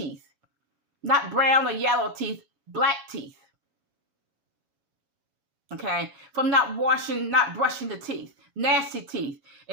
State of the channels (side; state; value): left; late; 7.2 ms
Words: Not brown or yellow teeth. Black teeth. Okay? From not brushing the teeth. Nasty teeth.